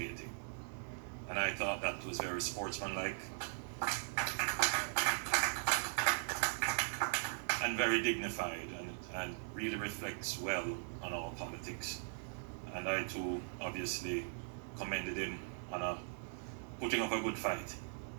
And I thought that was very sportsmanlike and very dignified, and really reflects well on our politics. And I too obviously commended him on putting up a good fight.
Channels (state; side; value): silent; left; digital silence